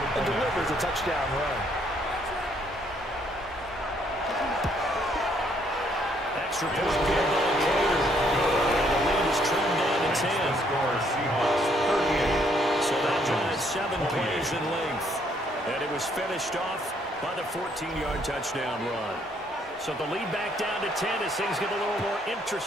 delivers a touchdown run. Extra point field goal later. The lead is trimmed down to 10. So that drives 7 plays in length. And it was finished off by the 14-yard touchdown run. So the lead back down to 10 as things get a little more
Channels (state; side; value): normal; both; correlation 0.68